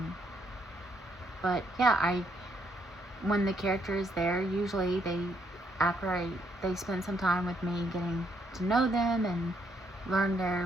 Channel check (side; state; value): both; normal; correlation 0.72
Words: But yeah, when the character is there, usually they spend some time with me getting to know them and learn their